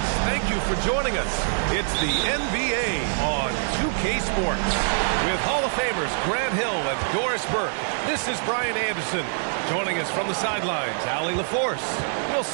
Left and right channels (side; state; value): left; silent; digital silence